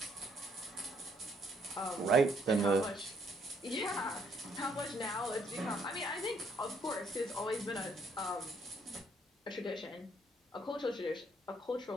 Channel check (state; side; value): normal; both; correlation 0.69